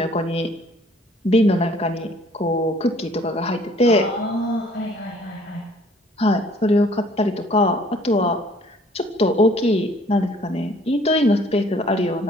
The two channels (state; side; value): normal; both; correlation 0.57